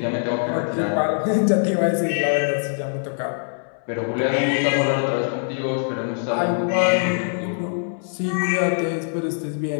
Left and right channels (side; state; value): right; silent; 63 dB below the other